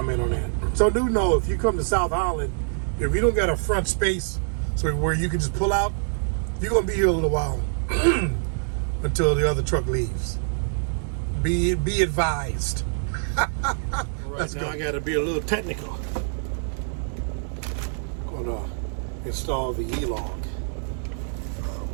on that. So do know, if you come to South Holland, if you don't got a front space so where you can just pull out, you're gonna be here a little while until the other truck leaves. Be advised. Let's go. I gotta be a little technical. Gonna install the e-log.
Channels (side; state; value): left; silent; 62 dB below the other